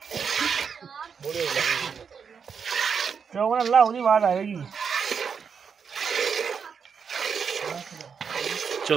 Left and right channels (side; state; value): left; quieter; 6.4 dB